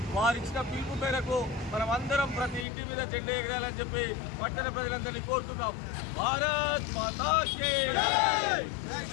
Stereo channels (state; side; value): drops out; right; at 2.7 s